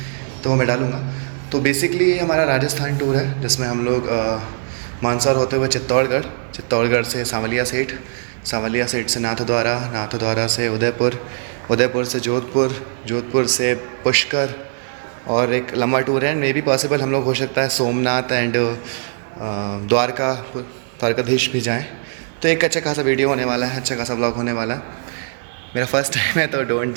तो वो मैं डालूँगा। तो बेसिकली ये हमारा राजस्थान टूर है जिसमें हम लोग मंदसौर होते हुए चित्तौड़गढ़ से सांवलिया सेठ से नाथद्वारा से उदयपुर से जोधपुर से पुष्कर, और एक लंबा टूर है। मे बी पॉसिबल हम लोग हो सकता है सोमनाथ एंड द्वारकाधीश भी जाएं। तो एक अच्छा खासा वीडियो होने वाला है, अच्छा खासा ब्लॉग होने वाला है। मेरा फर्स्ट टाइम है तो डोंट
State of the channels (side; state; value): left; silent; 62 dB below the other